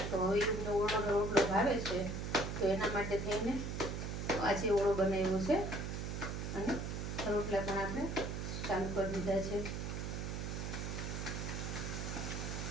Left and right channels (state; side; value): noise; right; hum, 4 dB below the sound